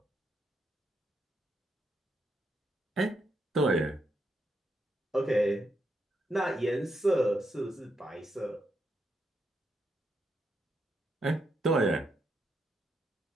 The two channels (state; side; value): normal; both; correlation 0.81